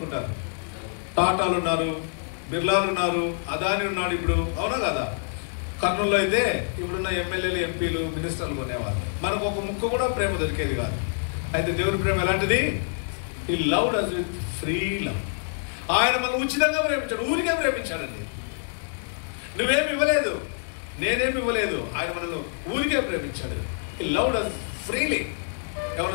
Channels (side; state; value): right; silent; digital silence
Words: టాటాలు ఉన్నారు, బిర్లాలు ఉన్నారు, అదాని ఉన్నాడు ఇప్పుడు, అవునా కదా? కర్నూలులో అయితే ఇప్పుడున్న ఎమ్మెల్యేలు, ఎంపీలు, మినిస్టర్లు కొనేవారు. మనకు ఒక ముక్క కూడా ప్రేమ దొరికేది కాదు. అయితే దేవుని ప్రేమ ఎలాంటిది? He loved us with free love. ఆయన మనం ఉచితంగా ప్రేమించాడు, ఊరికే ప్రేమించాడండి. నువ్వేమి ఇవ్వలేదు, నేనేమి ఇవ్వలేదు, ఆయన మనల్ని ఊరికే ప్రేమించాడు. హి లవ్డ్ us ఫ్రీలీ.